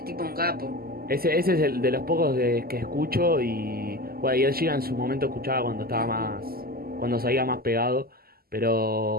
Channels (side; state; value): left; late; 0.44 ms